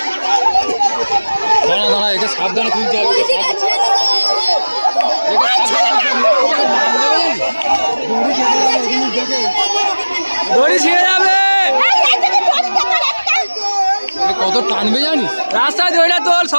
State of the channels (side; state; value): both; inverted; correlation -1.00